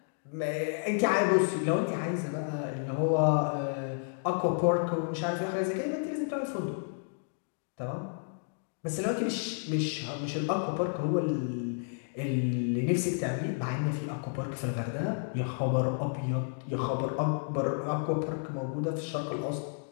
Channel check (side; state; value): right; silent; digital silence